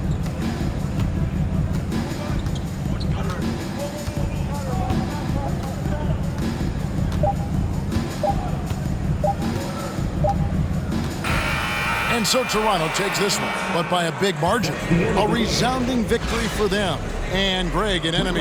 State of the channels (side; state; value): both; identical; correlation 1.00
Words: And so Toronto takes this one, but by a big margin. A resounding victory for them. And Greg in